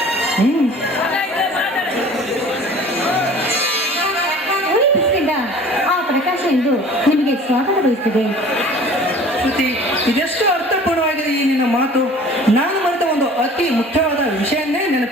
ಉಳಿ ಬಿಸಿಲಿಂದ ಆ ಪ್ರಕಾಶ ಎಂದು ನಿಮಗೆ ಸ್ವಾಗತ ಬಯಸ್ತಿದೆ. ಶ್ರುತಿ, ಇದೆಷ್ಟು ಅರ್ಥಪೂರ್ಣವಾಗಿದೆ ಈ ನಿನ್ನ ಮಾತು. ನಾನು ಮರೆತ ಒಂದು ಅತಿ ಮುಖ್ಯವಾದ ವಿಷಯನ್ನೇ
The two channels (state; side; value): normal; both; correlation 0.46